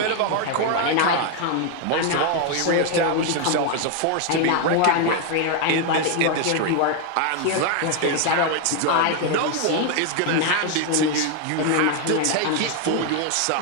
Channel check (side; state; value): both; different; correlation 0.01